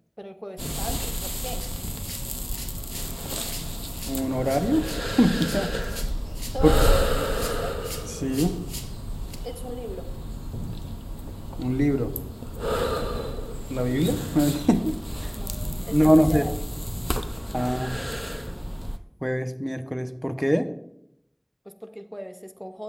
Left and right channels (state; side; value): identical; both; correlation 1.00